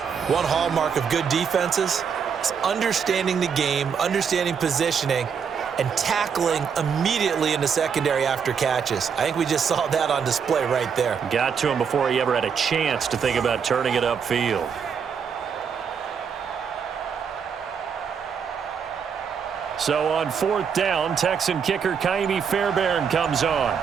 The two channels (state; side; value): quieter; left; 6.8 dB